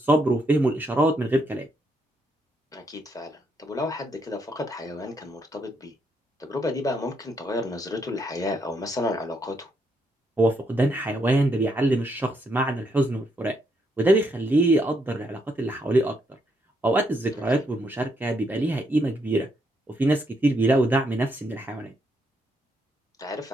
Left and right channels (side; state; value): both; normal; correlation 0.76